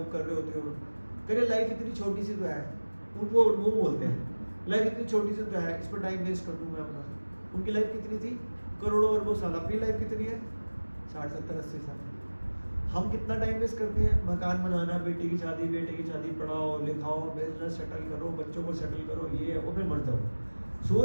कर रहे होते हो। कह रहे लाइफ इतनी छोटी सी तो है। उनको वो बोलते हैं लाइफ इतनी छोटी सी तो है, इस पर टाइम वेस्ट कर दूँ मैं अपना। उनकी लाइफ कितनी थी? करोड़ों अरबों साल। अपनी लाइफ कितनी है? 60, 70, 80 साल। हम कितना टाइम वेस्ट करते हैं? मकान बनाना, बेटी की शादी, बेटे की शादी, पढ़ाओ लिखाओ, बिजनेस सेटल करो, बच्चों को सेटल करो, ये और फिर मर जाओ।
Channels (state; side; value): inverted; both; correlation -1.00